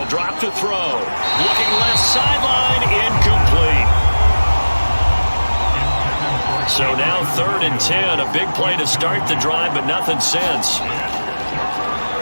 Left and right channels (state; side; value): inverted; both; correlation -1.00